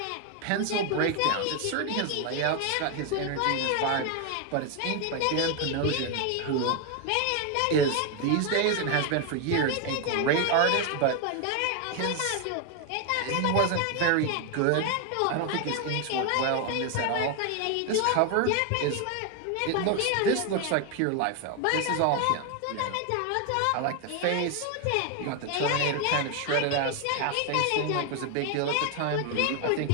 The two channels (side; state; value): both; different; correlation 0.01